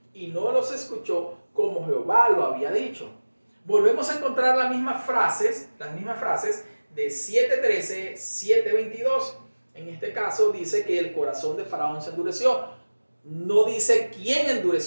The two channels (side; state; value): both; inverted; correlation -1.00